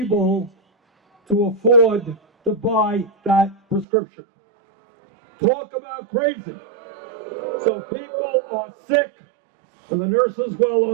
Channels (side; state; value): left; drops out; at 3.9 s